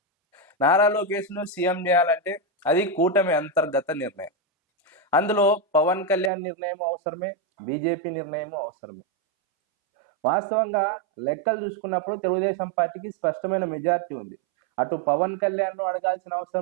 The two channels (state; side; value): drops out; left; at 6.3 s